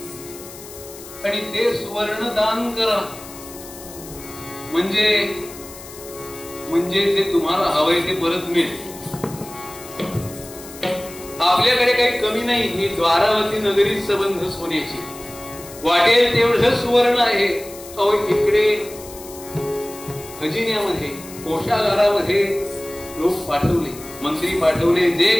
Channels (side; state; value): left; noise; hiss, 16 dB below the sound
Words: आणि ते सुवर्ण दान करा. म्हणजे जे तुम्हाला हवंय ते परत मिळेल. आपल्याकडे काही कमी नाही. ही द्वारावती नगरी संबंध सोन्याची, वाटेल तेवढं सुवर्ण आहे. अहो इकडे खजिन्यामध्ये, कोषागारामध्ये लोक पाठवले, मंत्री पाठवले. जे